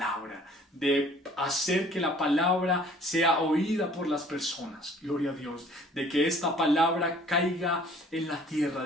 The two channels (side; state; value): both; normal; correlation 0.54